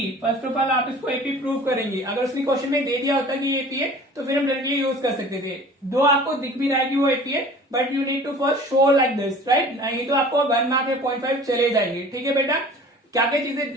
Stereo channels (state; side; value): normal; both; correlation 0.45